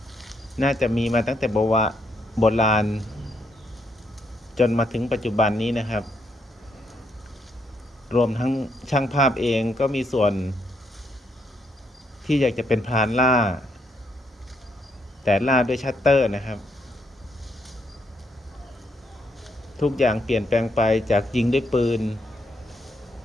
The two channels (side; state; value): both; normal; correlation 0.75